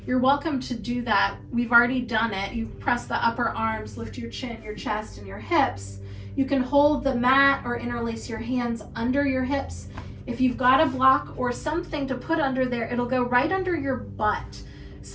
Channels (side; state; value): both; identical; correlation 1.00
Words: you're welcome to do that. We've already done it. You press the upper arms, lift your chin, your chest, and your hips. You can hold the mat or interlace your hands under your hips. If you've got a block or something to put under there, it'll go right under your butt.